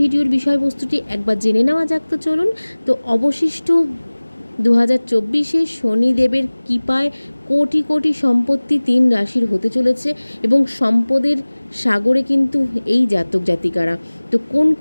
ভিডিওর বিষয়বস্তুটি একবার জেনে নেওয়া যাক। তো চলুন। তো অবশিষ্ট 2024-এ শনিদেবের কৃপায় কোটি কোটি সম্পত্তি 3 রাশির হতে চলেছে এবং সম্পদের সাগরে কিন্তু এই জাতক জাতিকারা, তো কোন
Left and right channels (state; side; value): inverted; both; correlation -1.00